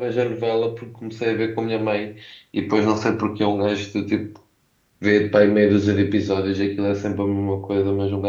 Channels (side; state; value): both; identical; correlation 1.00